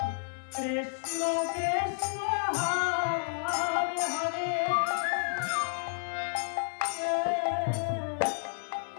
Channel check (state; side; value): silent; right; digital silence